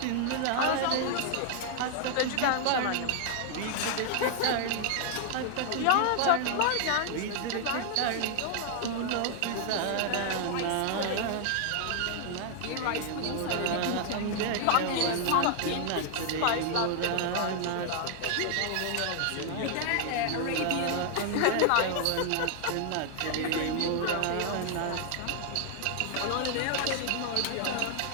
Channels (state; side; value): different; both; correlation 0.00